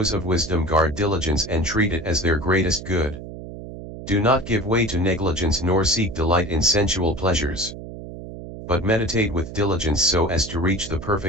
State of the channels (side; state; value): right; noise; hum, 12 dB below the sound